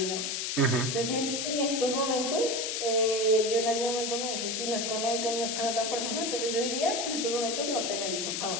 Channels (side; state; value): left; noise; hiss, 1 dB below the sound